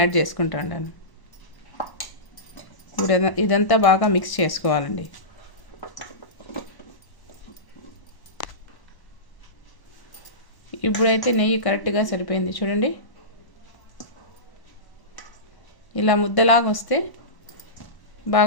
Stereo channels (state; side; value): late; right; 1.0 ms